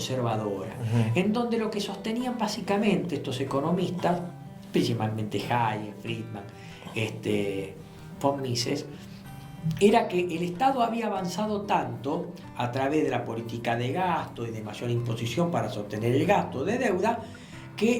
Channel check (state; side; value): identical; both; correlation 1.00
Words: en donde lo que sostenían básicamente estos economistas, principalmente Hayek, Friedman, von Mises, era que el Estado había avanzado tanto a través de la política de gasto y de mayor imposición para sostener el gasto de deuda,